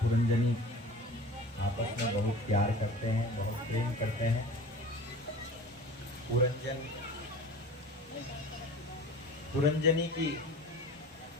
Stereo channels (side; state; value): both; normal; correlation 0.40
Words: पुरंजनी आपस में बहुत प्यार करते हैं, बहुत प्रेम करते हैं। पुरंजनी की